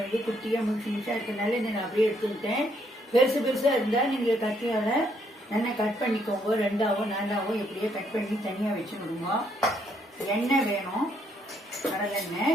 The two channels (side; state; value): both; normal; correlation 0.72